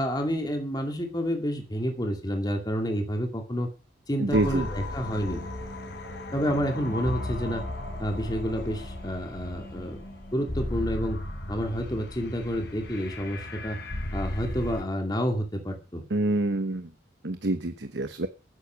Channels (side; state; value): both; normal; correlation 0.74